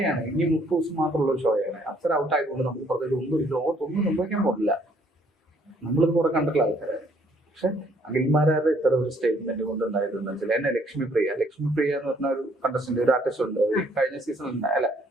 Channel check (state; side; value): normal; both; correlation 0.64